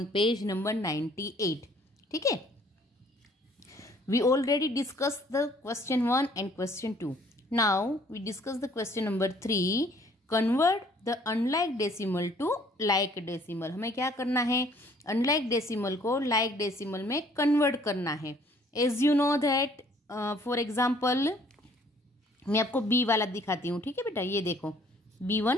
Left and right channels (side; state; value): both; normal; correlation 0.59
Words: page number 98. ठीक है, we already discussed the question 1 and question 2. Now we discuss the question number 3. Convert the unlike decimal to like decimal. हमें क्या करना है, unlike decimal को like decimal में convert करना है. As you know that for example मैं आपको B वाला दिखाती हूँ. ठीक है बेटा, ये देखो B1